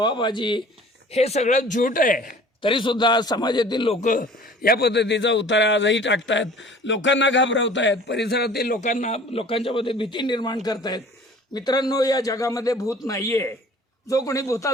हे सगळं झूट आहे। तरी सुद्धा समाजातील लोक या पद्धतीचा उतारा आजही टाकतात, लोकांना घाबरवतायत, परिसरातील लोकांच्या मध्ये भीती निर्माण करतायत। मित्रांनो, या जगामध्ये भूत नाहीये। जो कोणी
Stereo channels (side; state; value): both; normal; correlation 0.48